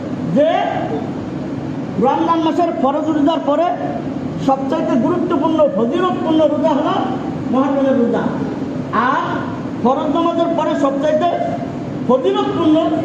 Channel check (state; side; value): identical; both; correlation 1.00